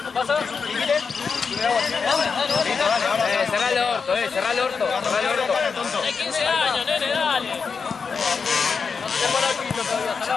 ¿Pasa? Cerrá el orto, cerrá el orto. Hay 15 años, nene, dale.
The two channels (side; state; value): right; quieter; 5.5 dB